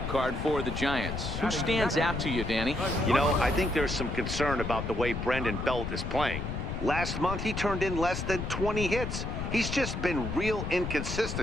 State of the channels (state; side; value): noise; left; rumble, 4 dB below the sound